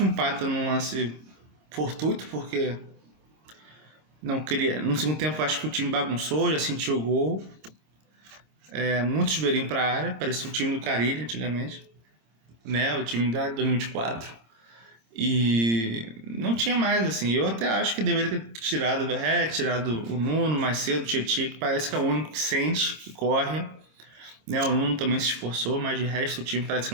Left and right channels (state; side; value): late; left; 26 ms